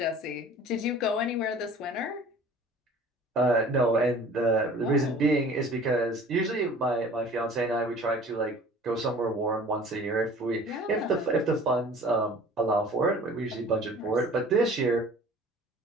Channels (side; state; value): both; normal; correlation 0.47